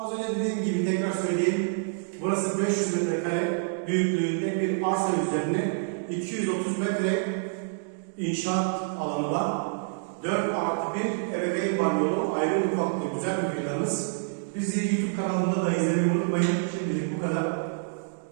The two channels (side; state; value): left; silent; digital silence